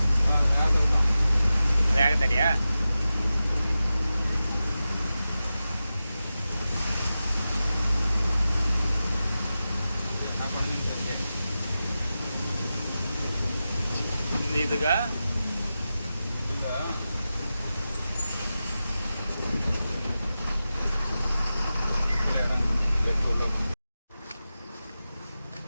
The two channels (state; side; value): inverted; both; correlation -0.93